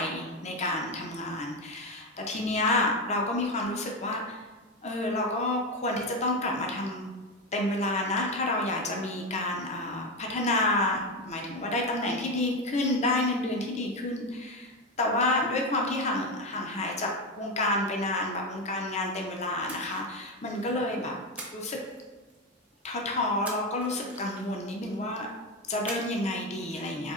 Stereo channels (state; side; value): normal; both; correlation 0.14